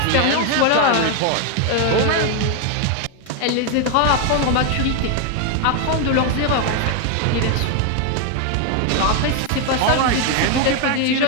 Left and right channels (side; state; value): both; different; correlation 0.01